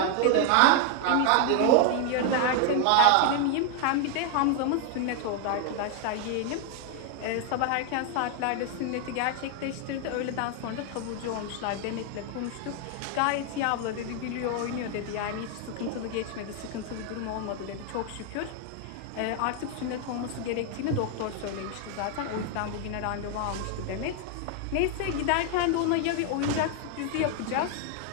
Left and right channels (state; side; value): different; both; correlation 0.00